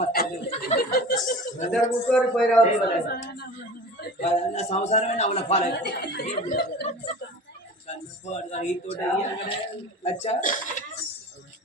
కూర్చొని పోయి నా సంవత్సరమే నవ్వుల పాలే అచ్చా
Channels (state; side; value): normal; both; correlation 0.37